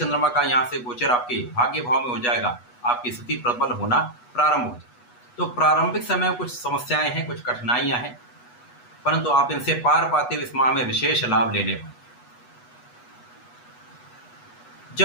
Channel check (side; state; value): right; late; 8.2 ms